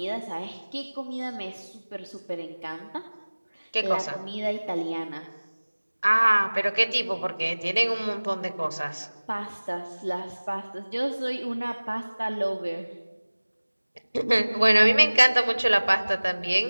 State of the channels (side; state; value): both; inverted; correlation -1.00